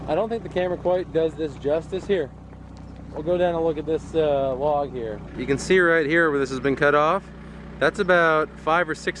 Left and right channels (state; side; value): identical; both; correlation 1.00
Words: I don't think the camera quite does this justice. Here, we'll go down and look at this log here. You can see right here where this has been cut off. That's about 5 or